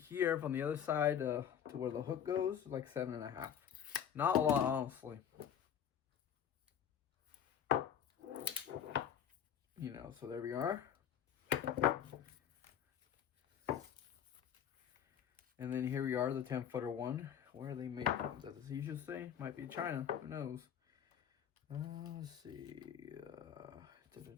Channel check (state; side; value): quieter; right; 9.0 dB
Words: from the other side to where the hook goes, like 7.5. Not a lot, honestly. You know, so there we are. And then here we are, the 10-footer one. Where are they made from? Is that the seashell say? Might be China. Who knows? Let's see.